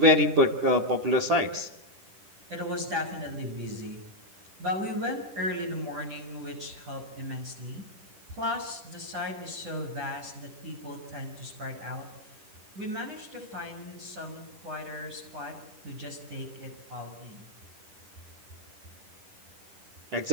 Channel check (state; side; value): late; left; 10 ms